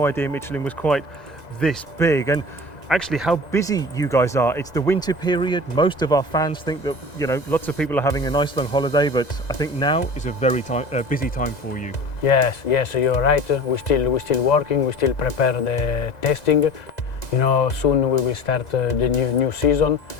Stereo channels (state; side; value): late; right; 2.0 ms